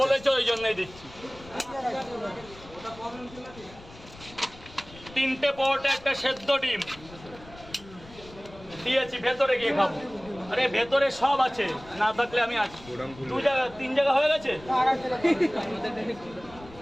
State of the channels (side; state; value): left; noise; rumble, 20 dB below the sound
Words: বলেছো ওই জন্যই দিচ্ছি। 3টে পরোটা, একটা সেদ্ধ ডিম দিয়েছি। ভেতরে গিয়ে খাবো। আরে ভেতরে সব আছে, না থাকলে আমি আছি। 2 জায়গা 3 জায়গা হয়ে গেছে।